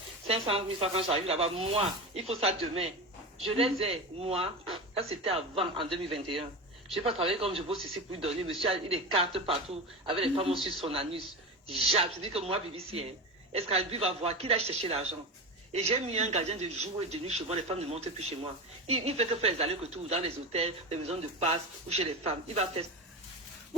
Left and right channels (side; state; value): both; normal; correlation 0.24